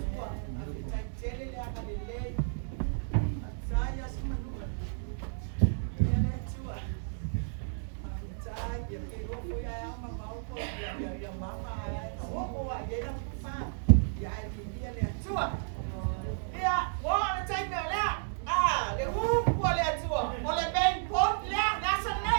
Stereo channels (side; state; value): left; silent; digital silence